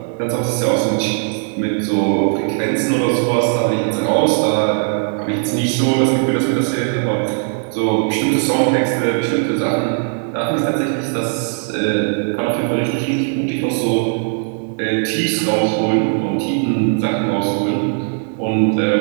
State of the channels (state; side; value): silent; left; 56 dB below the other